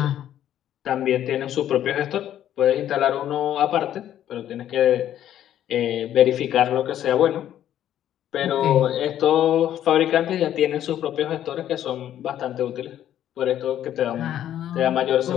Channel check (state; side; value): quieter; right; 11.3 dB